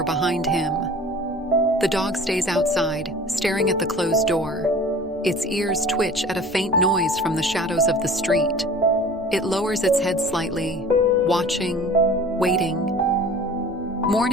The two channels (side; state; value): both; normal; correlation 0.44